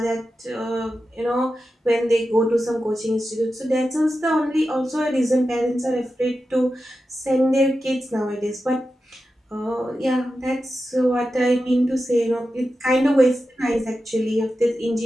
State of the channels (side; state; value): both; normal; correlation 0.91